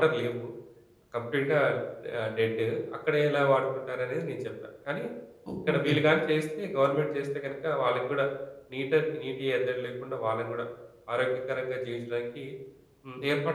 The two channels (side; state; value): both; identical; correlation 1.00